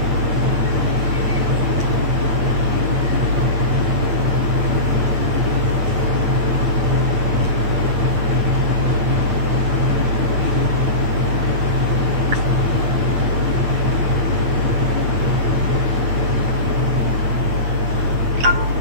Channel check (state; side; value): late; left; 8.4 ms